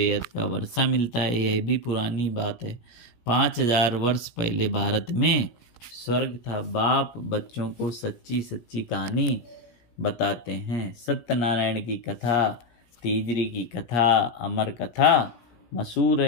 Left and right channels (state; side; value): late; right; 17 ms